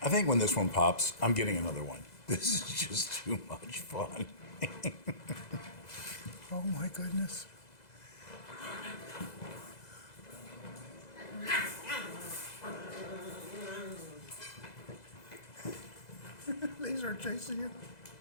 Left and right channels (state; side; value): late; right; 2.0 ms